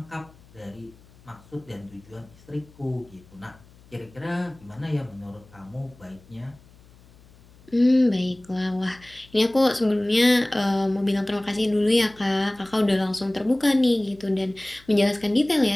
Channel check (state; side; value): noise; left; hum, 26 dB below the sound